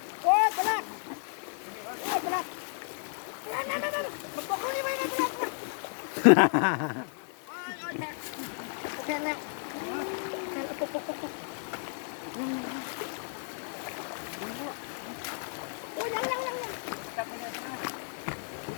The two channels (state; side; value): silent; right; 56 dB below the other